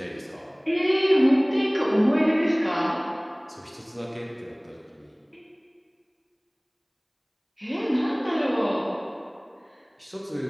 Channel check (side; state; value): both; identical; correlation 1.00